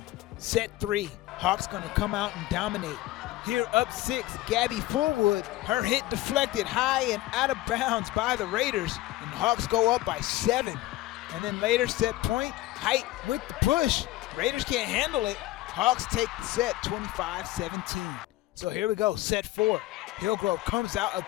Set 3, Hawks going to come out and dominate. Here up 6, Gabby Fullwood. Her hit deflected high and out of bounds by the Raiders. And the Hawks go up by 7. And then later set point, Height with the push. Raiders can't handle it. Hawks take the set 25-17. So here we go, set 4. Hillgrove comes out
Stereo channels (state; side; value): quieter; right; 17.0 dB